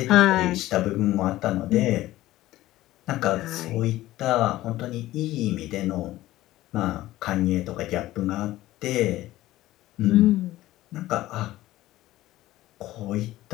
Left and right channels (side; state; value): right; quieter; 16.0 dB